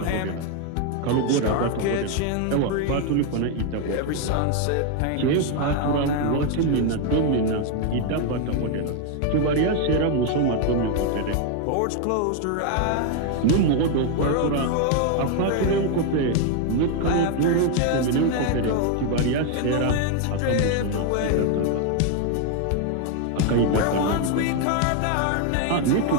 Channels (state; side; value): different; both; correlation 0.01